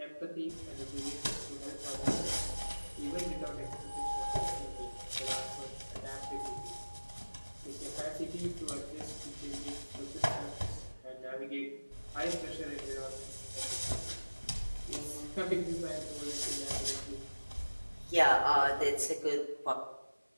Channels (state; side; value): inverted; both; correlation -1.00